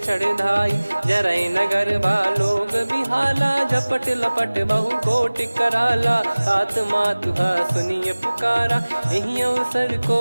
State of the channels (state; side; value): inverted; both; correlation -1.00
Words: चढ़ाई जरई नगर बालोग बिहाला झपट लपट बहु कोट कराला सात मातुहा सुनिय पुकारा यही अवसर को